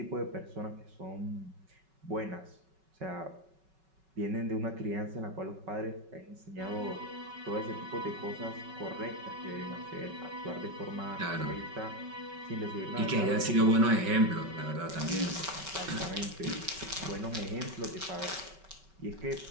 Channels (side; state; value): left; late; 5.3 ms